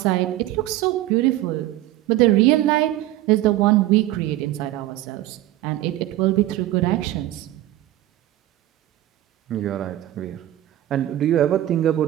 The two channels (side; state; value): left; quieter; 14.7 dB